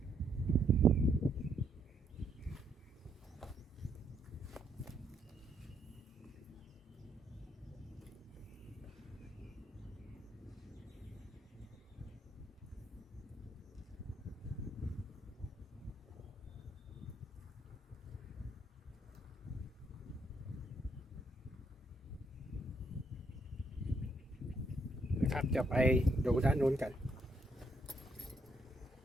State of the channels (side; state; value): both; normal; correlation 0.74